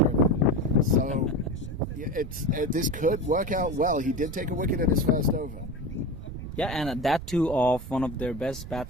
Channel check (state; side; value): noise; right; rumble, 11 dB below the sound